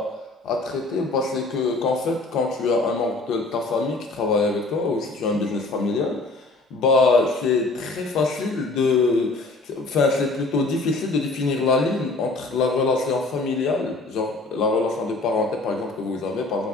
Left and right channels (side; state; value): right; quieter; 3.3 dB